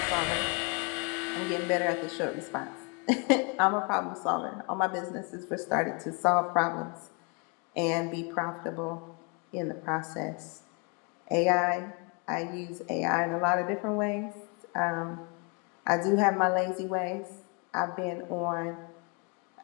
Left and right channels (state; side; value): quieter; right; 32.9 dB